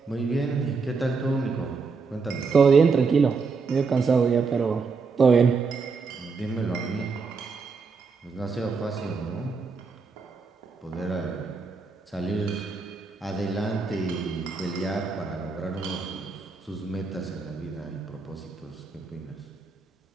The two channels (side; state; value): left; quieter; 4.7 dB